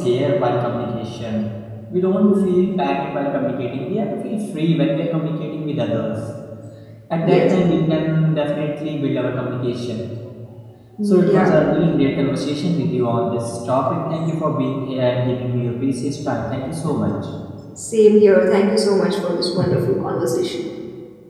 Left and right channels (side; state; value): both; identical; correlation 1.00